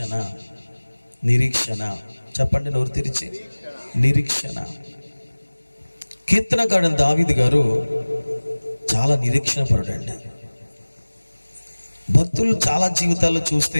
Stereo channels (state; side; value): inverted; both; correlation -1.00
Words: నిరీక్షణ చెప్పండి నోరు తెరిచి. నిరీక్షణ. కీర్తనకారుడు దావీదు గారు చాలా నిరీక్షణ పరుడండి. భక్తులు చాలా జీవితాల్లో